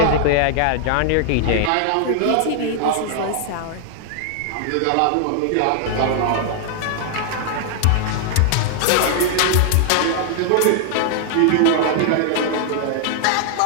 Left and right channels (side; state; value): both; different; correlation 0.00